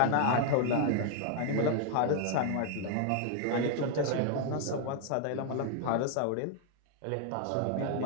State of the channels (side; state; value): both; different; correlation 0.00